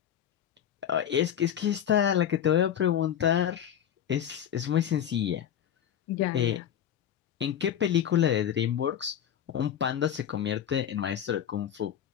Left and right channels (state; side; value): quieter; right; 9.7 dB